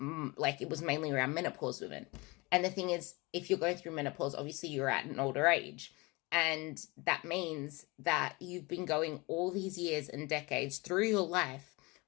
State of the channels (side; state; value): right; quieter; 25.1 dB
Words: was mainly around menopause women. And the thing is, if you're going through menopause, obviously you're at an older age. And that means that you've been going all these years and decades through your life